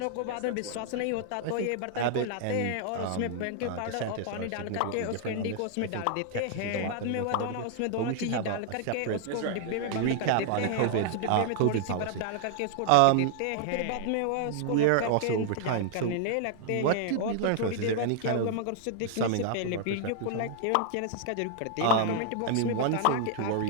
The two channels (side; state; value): both; different; correlation 0.00